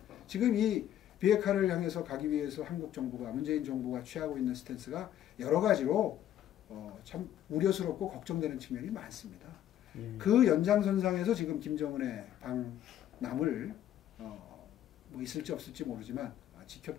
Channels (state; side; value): quieter; right; 11.4 dB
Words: 지금 이 비핵화를 향해서 가기 위해서 한국 정부가 문재인 정부가 취하고 있는 스탠스가 여러 가지로 참 우려스럽고 걱정되는 측면이 많습니다. 그 연장선상에서 지금 김정은의 방남을 뭐 있을지 없을지 모르지만